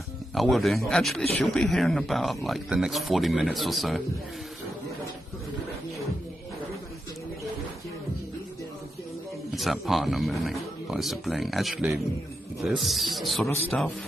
I will do. Actually, she'll be here in about like the next 40 minutes or so. It's that partner moving by sibling. Actually, this sort of stuff,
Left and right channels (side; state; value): both; normal; correlation 0.86